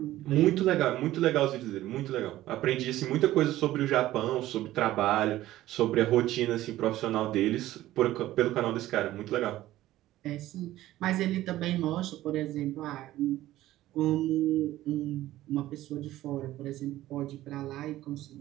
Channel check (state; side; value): quieter; left; 15.1 dB